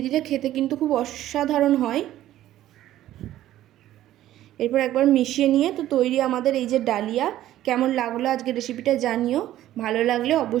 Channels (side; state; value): left; quieter; 13.5 dB